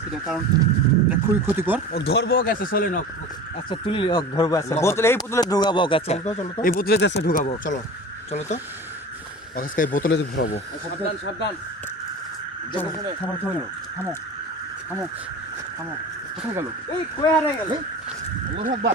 না, কারণ এটা খুবই ক্ষতিকর। ও ধরবো গেছে চলে না আচ্ছা তুলি ধরবো আচ্ছা বোতলে এই বোতলে ঢুকাবো আচ্ছা চলো তো এই বোতলে দেশে ঢুকাবো চলো চলো তো আজকে এই বোতলে ভরাবো। সাবধান সাবধান থামো থামো থামো থামো থামো, কোথায় গেল? এই কই হারাই গেল আল্লাহু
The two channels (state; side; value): normal; both; correlation 0.35